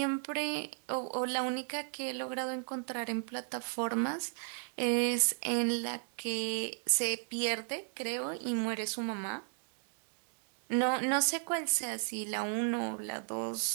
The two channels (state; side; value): silent; left; 54 dB below the other